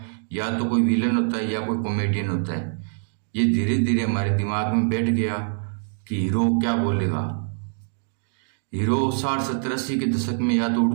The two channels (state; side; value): silent; left; digital silence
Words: या तो कोई विलन होता है या कोई कॉमेडियन होता है। ये धीरे धीरे हमारे दिमाग में बैठ गया कि हीरो क्या बोलेगा। हीरो 60, 70, 80 के दशक में या तो